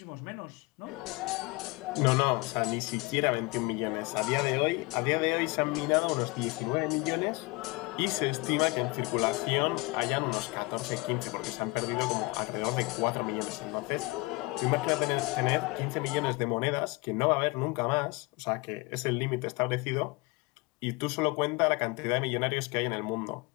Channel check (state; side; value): quieter; right; 25.0 dB